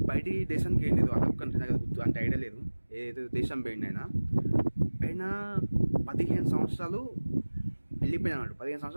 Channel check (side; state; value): both; inverted; correlation -1.00